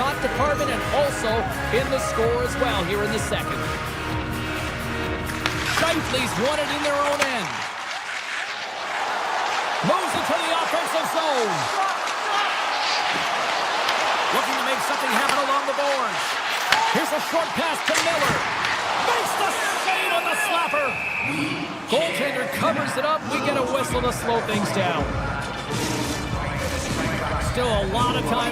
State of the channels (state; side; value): identical; both; correlation 1.00